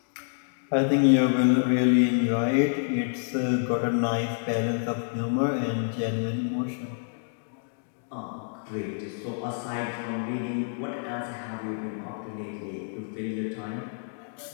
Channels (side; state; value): right; silent; digital silence